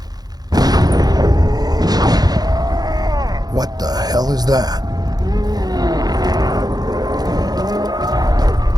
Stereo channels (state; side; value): late; left; 0.19 ms